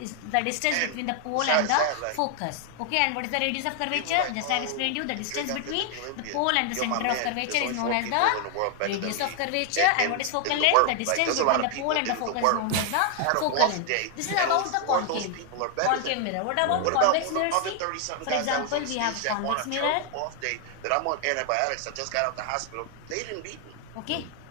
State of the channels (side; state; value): both; different; correlation 0.00